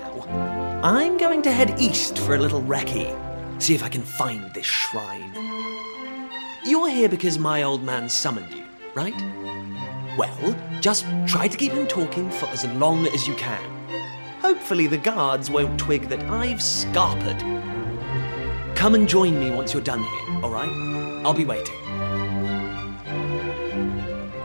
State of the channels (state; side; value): inverted; both; correlation -1.00